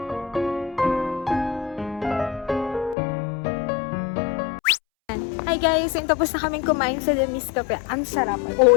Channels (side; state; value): right; drops out; at 3.0 s